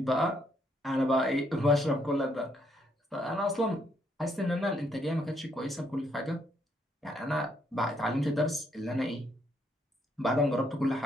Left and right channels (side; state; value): both; normal; correlation 0.72